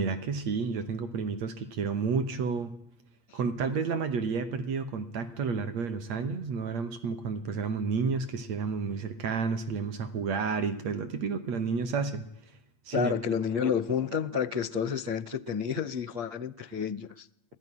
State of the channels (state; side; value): late; left; 8.6 ms